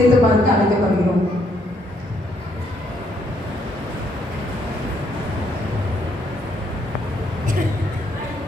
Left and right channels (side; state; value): both; normal; correlation 0.71